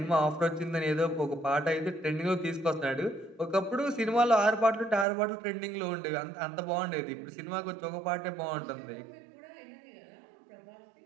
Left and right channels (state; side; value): drops out; left; at 5.1 s